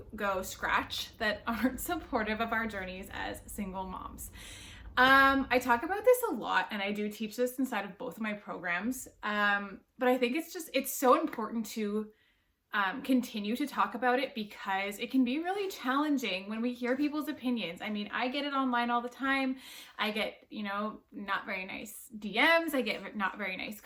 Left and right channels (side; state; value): both; identical; correlation 1.00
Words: go scratch that aren't supportive of our journeys as single moms. I talk about this a lot, and I do teach this inside of both of my programs. But I think it's so important to continue to talk about it because it can be really challenging when we hear people's opinions. I mean, I get it online all the time. I get, not very nice DMs. I get not very nice